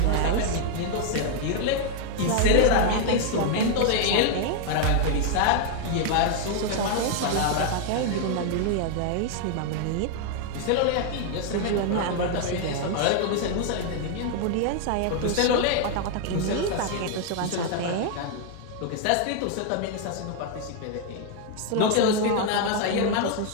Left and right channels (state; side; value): different; both; correlation 0.00